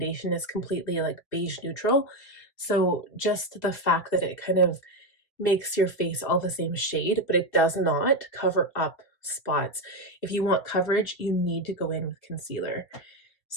is completely like beige neutral. So just the fact that it kind of makes your face all the same shade, but it does not cover up spots. If you want coverage, you need to go in with concealer.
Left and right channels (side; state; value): right; late; 2.5 ms